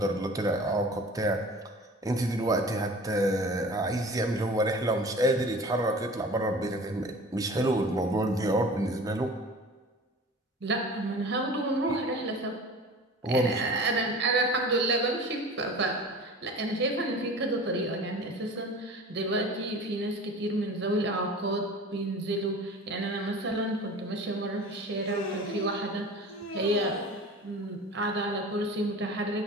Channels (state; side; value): normal; both; correlation 0.40